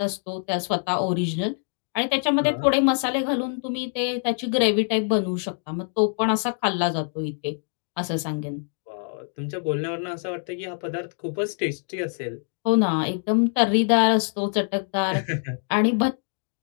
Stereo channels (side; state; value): right; silent; 58 dB below the other